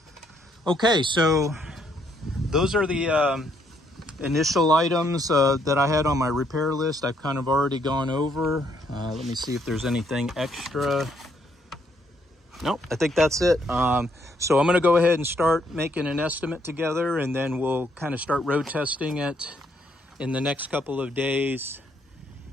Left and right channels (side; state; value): both; normal; correlation 0.71